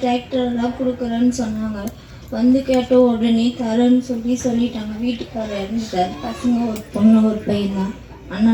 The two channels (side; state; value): both; identical; correlation 1.00